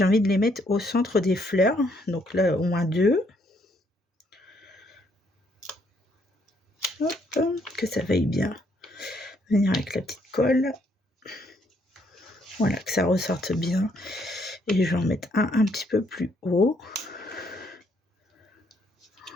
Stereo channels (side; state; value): both; normal; correlation 0.70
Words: envie de les mettre au centre des fleurs. Donc là, au moins 2. Hop, que ça veuille bien venir avec la petite colle. Voilà, que ça ressorte bien. Et je vais en mettre un petit peu plus haut.